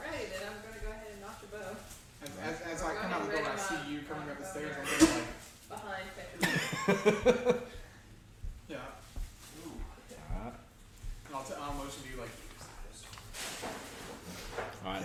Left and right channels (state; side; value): identical; both; correlation 1.00